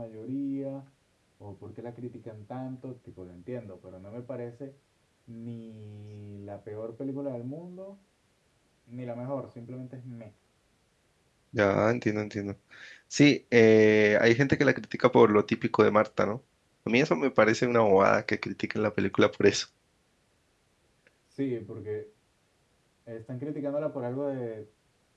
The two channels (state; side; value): identical; both; correlation 1.00